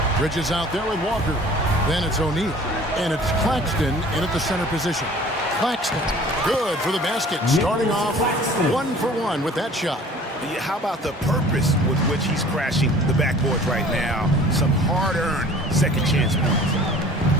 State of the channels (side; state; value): both; normal; correlation 0.48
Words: Bridges out there with Walker. Then it's O'Neal. And it's Claxton in at the center position. Claxton, good for the basket. Starting off 1-for-1 with that shot. How about the purpose with which he's crashing the backboards right now? Some hard-earned second chance points.